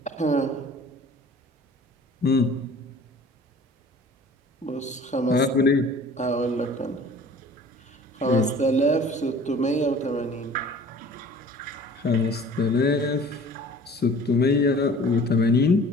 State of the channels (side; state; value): both; normal; correlation 0.47